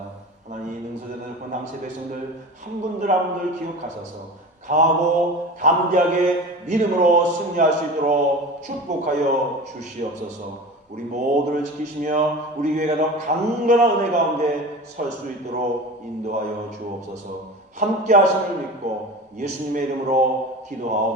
하나님 능소되는 권항세 백성들 한 분들 한 분들 기억하셔서 강하고 담대하게 믿음으로 승리할 수 있도록 축복하여 주시옵소서. 우리 모두를 지키시며 우리 교회가 더 강건한 은혜 가운데 설 수 있도록 인도하여 주옵소서. 함께 하심을 믿고 예수님의 이름으로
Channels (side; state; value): both; normal; correlation 0.33